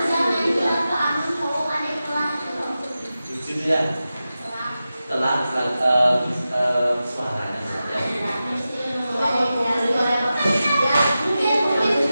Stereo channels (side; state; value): both; inverted; correlation -0.93